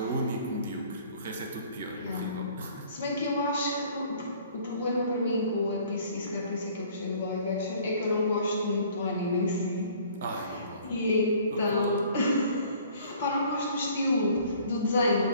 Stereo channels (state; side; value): inverted; both; correlation -0.54